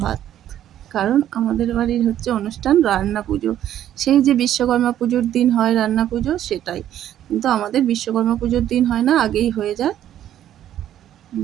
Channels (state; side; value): quieter; left; 11.4 dB